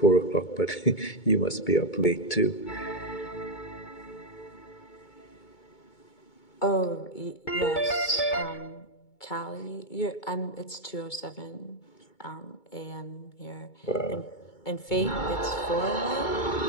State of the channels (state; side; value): late; right; 2.2 ms